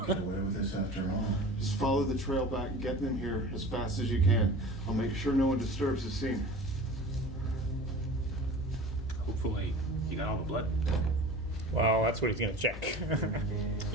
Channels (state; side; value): normal; both; correlation 0.39